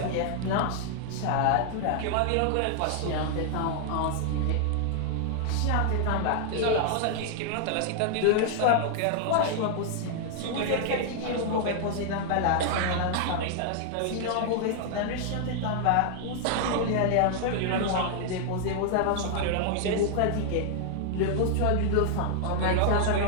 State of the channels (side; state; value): both; different; correlation 0.00